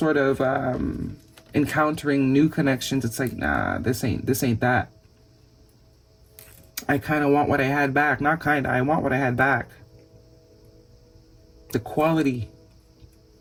of encountering new connections, it's like, nah, this ain't that. I kind of want what I had back. Not kind of, I want what I had back. The quality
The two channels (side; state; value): both; identical; correlation 1.00